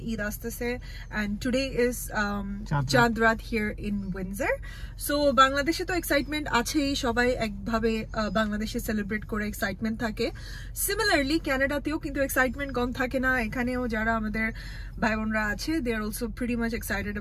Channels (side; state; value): both; identical; correlation 1.00